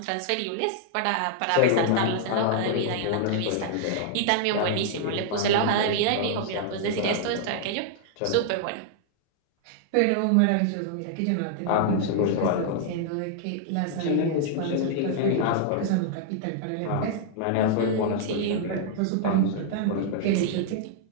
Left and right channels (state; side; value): different; both; correlation -0.01